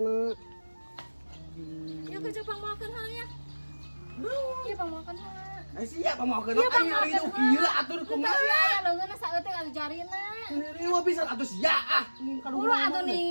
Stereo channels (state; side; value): inverted; both; correlation -1.00